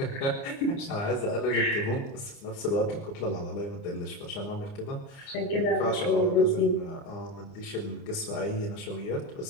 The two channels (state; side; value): late; right; 29 ms